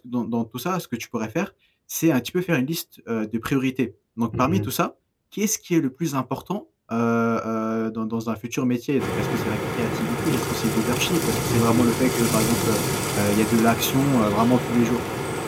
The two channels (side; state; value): both; identical; correlation 1.00